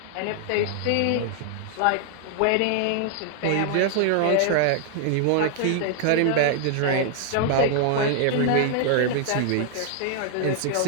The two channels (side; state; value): both; different; correlation 0.00